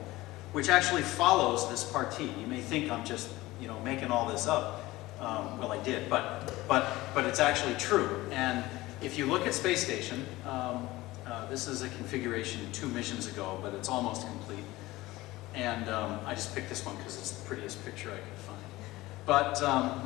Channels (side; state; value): right; quieter; 18.7 dB